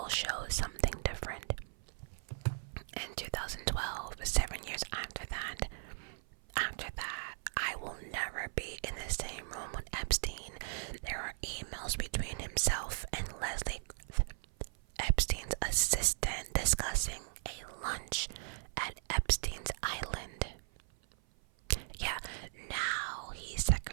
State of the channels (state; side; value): silent; left; 53 dB below the other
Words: shows something different. In 2012, 7 years after that, I will never be in the same room with Epstein. There are emails between himself and Leslie, Epstein's assistant, discussing a lunch at Epstein's Island. Yeah, now he's